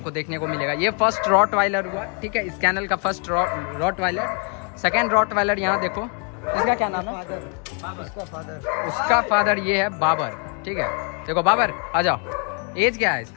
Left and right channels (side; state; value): right; quieter; 37.8 dB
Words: को देखने को मिलेगा। ये फर्स्ट रॉटवाइलर हुआ, ठीक है, इस कैनल का फर्स्ट रॉटवाइलर। सेकेंड रॉटवाइलर यहाँ देखो, इसका क्या नाम है? उसका फादर ये है बाबर, ठीक है। देखो बाबर, आ जाओ। एज क्या है